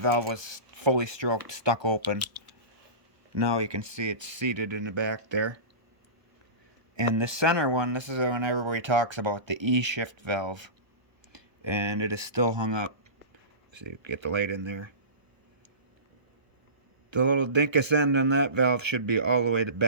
was fully stroked, stuck open. Now you can see it's seated in the back there. And the center one, this is when everybody talks about the E-shift valve, and it is still hung up. So you get the light in there. The little dinkus end on that valve should be all the way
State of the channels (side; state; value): left; late; 1.3 ms